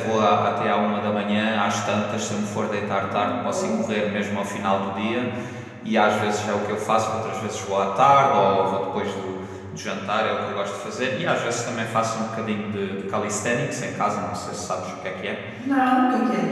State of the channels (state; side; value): identical; both; correlation 1.00